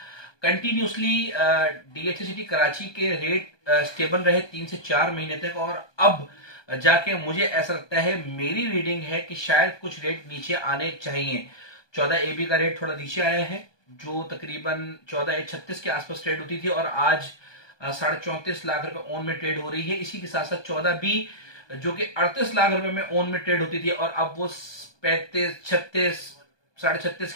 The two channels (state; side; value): late; right; 1.2 ms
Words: कंटिन्यूसली डीएचएसटी कराची के रेट स्टेबल रहे 3 से 4 महीने तक, और अब जाके मुझे ऐसा लगता है, मेरी रीडिंग है कि शायद कुछ रेट नीचे आने चाहिए। 14 AB का रेट थोड़ा नीचे आया है, जो तकरीबन 14 36 के आसपास ट्रेड होती थी, और आज 34.5 लाख रुपए ओन में ट्रेड हो रही है। इसी के साथ साथ 14B जो कि 38 लाख रुपए में ओन में ट्रेड होती थी, और अब वो 35 36 36.5